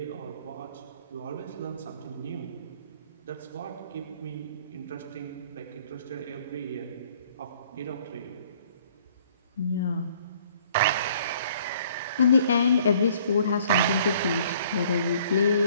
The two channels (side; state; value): both; inverted; correlation -0.58